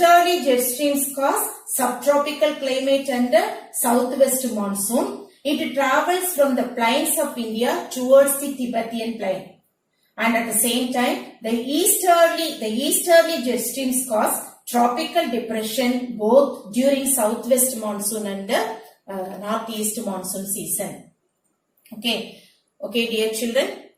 jet streams cause subtropical climate and southwest monsoon. It travels from the plains of India towards the Tibetan plain. And at the same time, the easterly jet streams cause tropical depression both during southwest monsoon and northeast monsoon season. Okay, dear children,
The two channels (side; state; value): both; identical; correlation 1.00